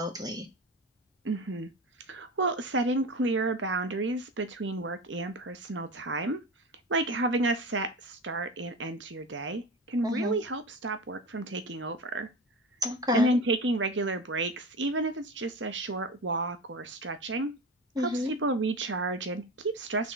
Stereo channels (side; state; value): both; normal; correlation 0.27